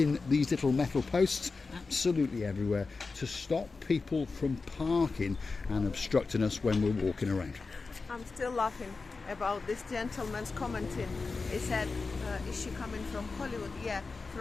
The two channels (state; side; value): quieter; right; 4.2 dB